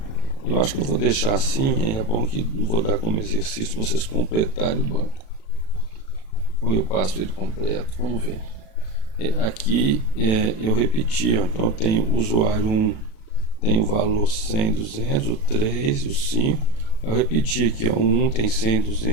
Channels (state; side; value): late; right; 36 ms